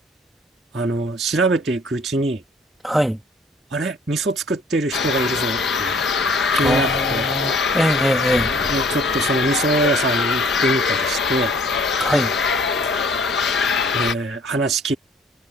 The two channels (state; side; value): normal; both; correlation 0.55